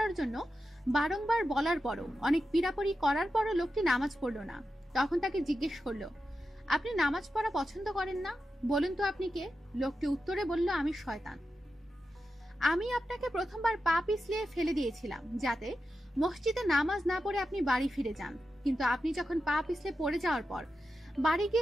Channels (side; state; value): both; normal; correlation 0.90